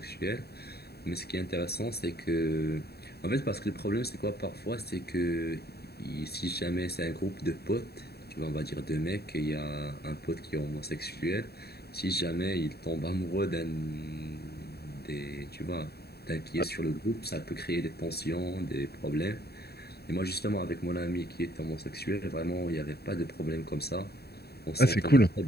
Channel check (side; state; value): right; late; 0.47 ms